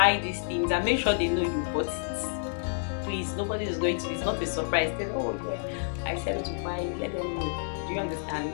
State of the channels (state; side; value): silent; right; digital silence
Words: these things and make sure they know you bought it. Please, nobody is going to, it's not a surprise. They know, oh yeah, I said to buy it, let them know. Do you understand?